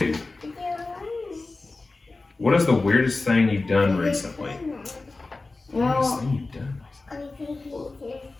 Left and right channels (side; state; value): right; quieter; 3.4 dB